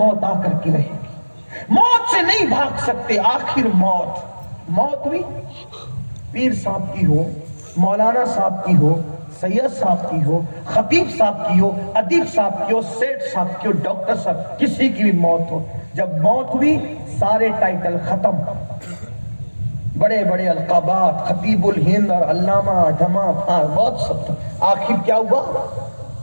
آ کر کے رہے گی، موت سے نہیں بھاگ سکتے۔ آخر موت، موت ہوئی، پیر صاحب کی ہو، مولانا صاحب کی ہو، سید صاحب کی ہو، خطیب صاحب کی ہو، ادیب صاحب کی ہو، سیٹھ صاحب کی ہو، ڈاکٹر صاحب، کسی کی بھی موت ہو، جب موت ہوئی سارے ٹائٹل ختم، بڑے بڑے القابات، خطیب الہند اور علامہ ڈھما بہت سب، آخر کیا ہوا؟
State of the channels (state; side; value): inverted; both; correlation -1.00